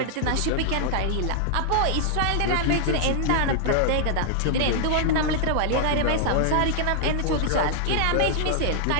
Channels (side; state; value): both; different; correlation -0.01